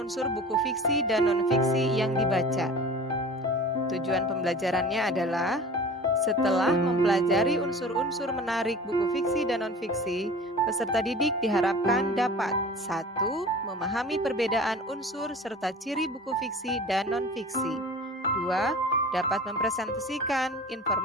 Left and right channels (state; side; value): normal; both; correlation 0.40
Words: buku fiksi dan non-fiksi yang dibaca. Tujuan pembelajarannya adalah setelah mempelajari unsur-unsur menarik buku fiksi dan non-fiksi, peserta didik diharapkan dapat 1. Memahami perbedaan unsur serta ciri buku fiksi dan non-fiksi. 2. Dapat mempresentasikan